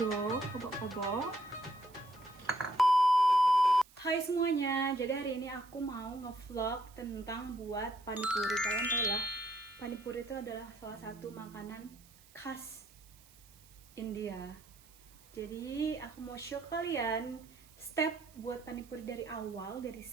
kobok-kobok. Hai semuanya, jadi hari ini aku mau ngevlog tentang buat panipuri. Kalian tahu lah, panipuri itu adalah salah satu makanan khas India. Jadi aku mau show kalian step buat panipuri dari awal, dari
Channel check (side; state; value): right; noise; hiss, 25 dB below the sound